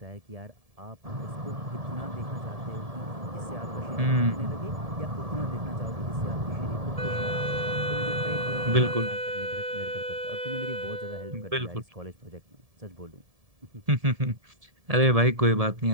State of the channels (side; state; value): left; late; 1.7 ms